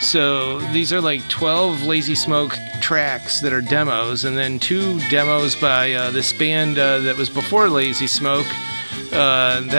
So these are like 12 Lazy Smoke tracks that are demos, and then 2 demos by this band that was before Lazy Smoke.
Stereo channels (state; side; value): inverted; both; correlation -1.00